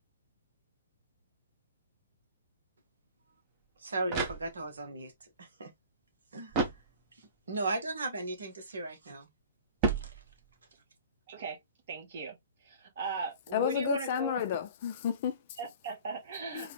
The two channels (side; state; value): both; inverted; correlation -0.43